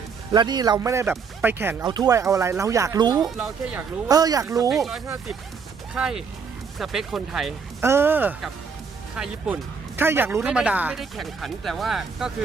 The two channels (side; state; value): left; quieter; 5.7 dB